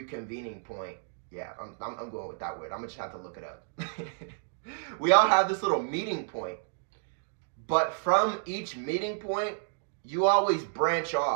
point. Yeah, I'm going with that word. I'm going to just have to look it up. We all have this little meeting point. But from each meeting point, you always branch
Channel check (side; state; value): left; silent; digital silence